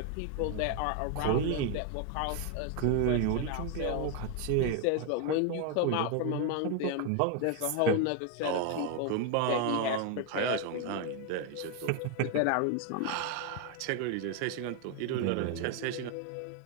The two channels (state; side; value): different; both; correlation 0.01